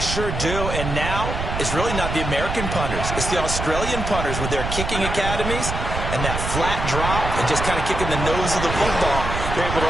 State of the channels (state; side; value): noise; right; rumble, 4 dB below the sound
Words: sure do. And now it's really not the American punters. It's the Australian punters with their kicking academies. And that flat drop and just kind of kicking the nose of the football, they're able to